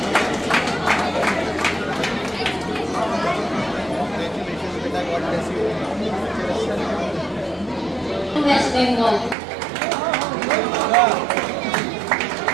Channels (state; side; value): drops out; left; at 9.3 s